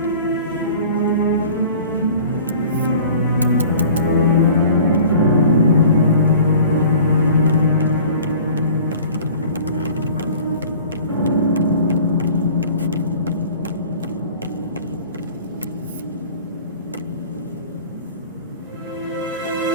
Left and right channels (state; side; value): inverted; both; correlation -0.45